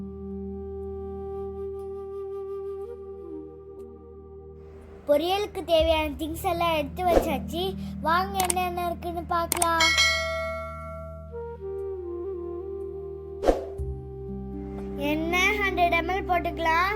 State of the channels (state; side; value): identical; both; correlation 1.00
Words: பொரியலுக்கு தேவையான திங்ஸ் எல்லாம் எடுத்து வச்சாச்சு. வாங்க என்னென்ன இருக்குன்னு பார்க்கலாம். எண்ணெய் 100 ml